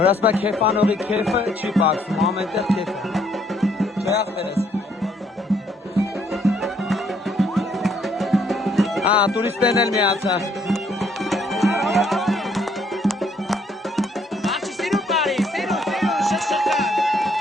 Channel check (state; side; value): normal; both; correlation 0.67